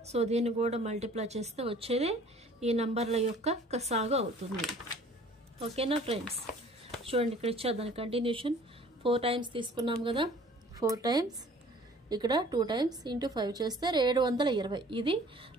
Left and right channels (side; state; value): both; normal; correlation 0.51